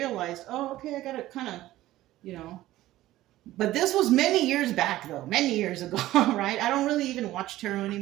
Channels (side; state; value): left; quieter; 15.5 dB